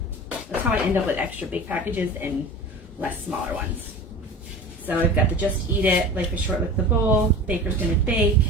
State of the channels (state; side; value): normal; both; correlation 0.35